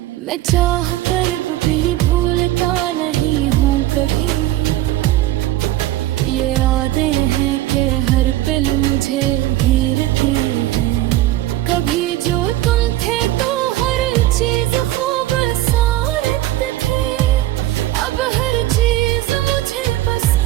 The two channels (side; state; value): left; quieter; 15.3 dB